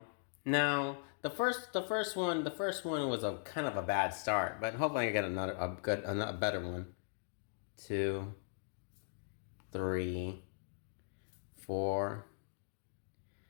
Now, the first one was a kind of a bad start, but hopefully I get a better one. 2, 3, 4,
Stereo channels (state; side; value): silent; right; digital silence